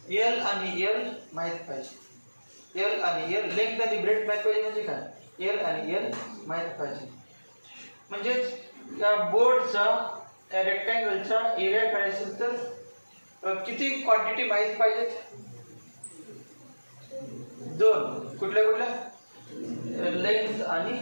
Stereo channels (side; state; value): both; inverted; correlation -1.00